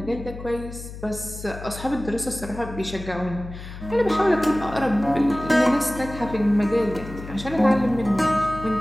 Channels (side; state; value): left; noise; hum, 12 dB below the sound